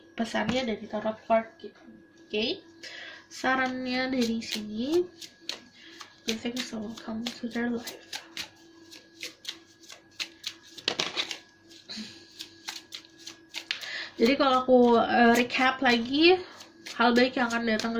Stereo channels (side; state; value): both; identical; correlation 1.00